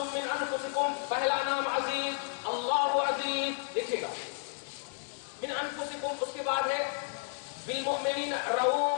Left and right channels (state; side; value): silent; right; digital silence